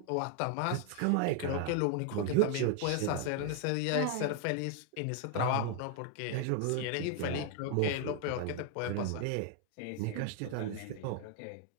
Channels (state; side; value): different; both; correlation 0.01